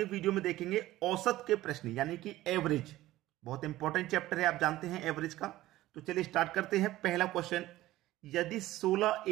वीडियो में देखेंगे औसत के प्रश्न यानी कि एवरेज। बहुत इंपॉर्टेंट चैप्टर है, आप जानते हैं एवरेज का। तो चलिए स्टार्ट करते हैं। पहला क्वेश्चन, यदि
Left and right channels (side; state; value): left; quieter; 16.0 dB